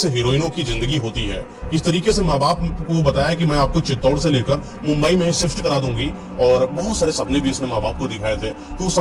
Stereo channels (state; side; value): identical; both; correlation 1.00